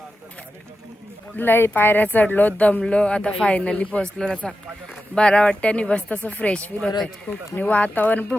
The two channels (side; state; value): both; normal; correlation 0.91